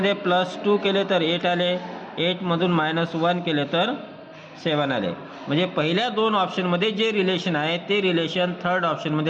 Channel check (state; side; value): identical; both; correlation 1.00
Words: +2 केले तर 8 आले. 8मधून -1 केले तर 7 आले. म्हणजे पहिल्या 2 ऑप्शनमध्ये जे रिलेशन आहे ते रिलेशन थर्ड